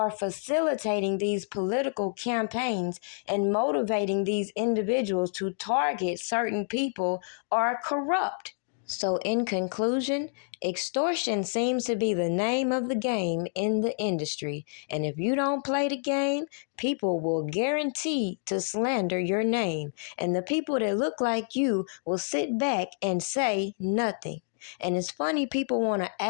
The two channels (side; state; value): right; silent; digital silence